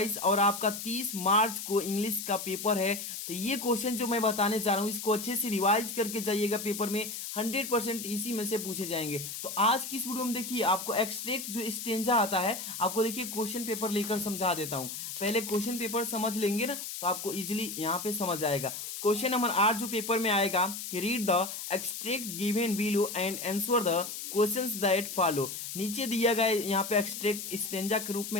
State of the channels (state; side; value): noise; left; hiss, 7 dB below the sound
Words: और आपका 30 मार्च को इंग्लिश का पेपर है तो ये क्वेश्चन जो मैं बताने जा रहा हूँ इसको अच्छे से रिवाइज करके जाइएगा। पेपर में 100% इसी में से पूछे जाएंगे। तो आज की इस वीडियो में देखिए आपको एक्सट्रैक्ट जो स्टेंजा आता है आपको देखिए क्वेश्चन पेपर लेकर समझा देता हूँ। पहले क्वेश्चन पेपर समझ लेंगे ना तो आपको इजीली यहाँ पे समझ आएगा। क्वेश्चन नंबर 8 जो पेपर में आएगा कि read the extract given below and answer the questions that follow. नीचे दिया गया यहाँ पे एक्सट्रैक्ट स्टेंजा के रूप में